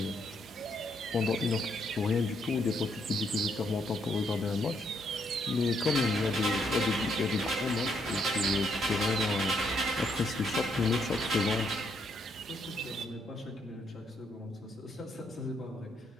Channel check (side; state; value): both; normal; correlation 0.74